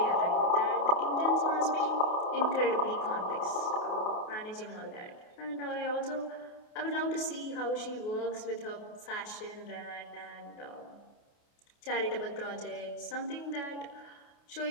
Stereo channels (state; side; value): late; right; 28 ms